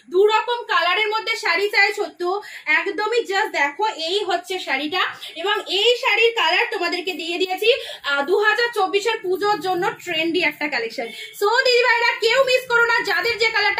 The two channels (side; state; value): both; identical; correlation 1.00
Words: দু রকম কালারের মধ্যে শাড়ি চাইছো, তো একদমই জাস্ট দেখো এই হচ্ছে শাড়িটা। এবং এই শাড়ির কালার তোমাদেরকে দিয়ে দিয়েছি 2024 পুজোর জন্য ট্রেন্ডি একটা কালেকশন। সো দিদি ভাইরা কেউ মিস করো না, যাদের যে